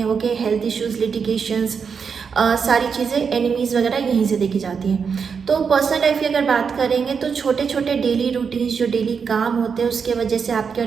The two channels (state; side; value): quieter; left; 6.1 dB